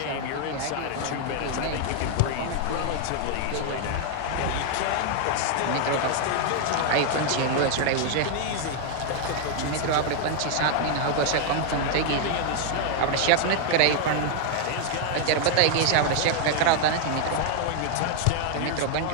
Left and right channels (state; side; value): different; both; correlation 0.00